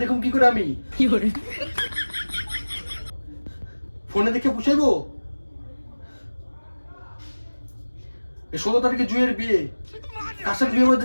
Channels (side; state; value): both; inverted; correlation -1.00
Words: দেখুন কি করে আমি? ফোনে দেখে পুষাইবো? এই 16 তারিখে জুয়ের বিয়ে, কার সাথে বিয়ে